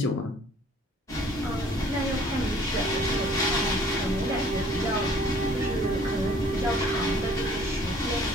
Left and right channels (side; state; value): both; normal; correlation 0.55